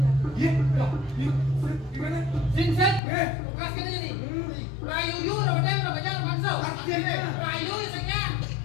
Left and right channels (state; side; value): drops out; right; at 3.0 s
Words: lagi. Iya, gimana? Ginseng, tugas kan ini. Rayu yu, rodeng, rodeng, bakso. Rayu isengnya,